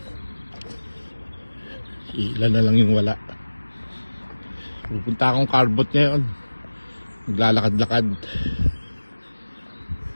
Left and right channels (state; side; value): inverted; both; correlation -1.00